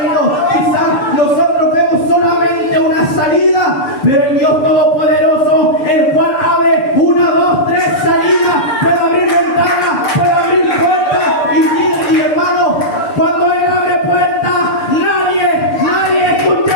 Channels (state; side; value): late; right; 6.7 ms